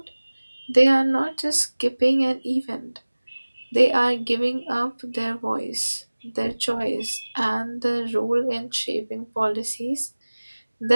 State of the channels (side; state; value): both; inverted; correlation -1.00